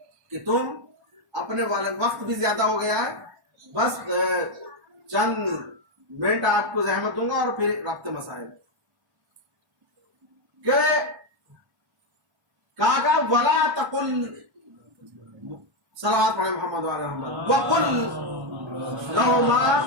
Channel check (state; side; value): late; left; 1.1 ms